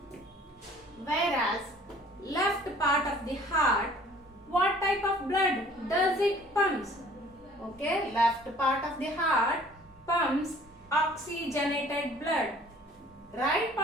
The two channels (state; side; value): normal; both; correlation 0.53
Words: Whereas left part of the heart, what type of blood does it pumps? Okay, left part of the heart pumps oxygenated blood. Right